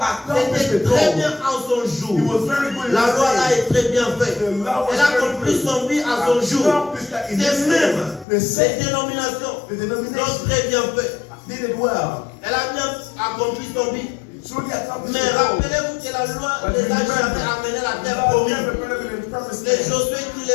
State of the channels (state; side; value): drops out; right; at 8.2 s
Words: accomplished C'était the très goal. bien en son It jour. was very good in La his loi là day. est très bien faite. The law was Elle a very accompli good. son but à son jour. Accomplished that in C'est his même day. The ces same. dénominations The l'ont denomination très bien fait. did it well. Elle a bien accompli son but. Truly accomplished Mais the goal. rappelez-vous que la loi But les a remember, jamais amenés à la terre God promise. never put them in the promised C'est land. Josué qui